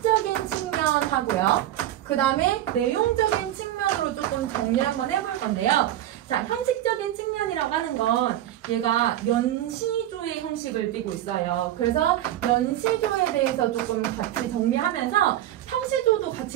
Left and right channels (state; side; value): quieter; left; 12.9 dB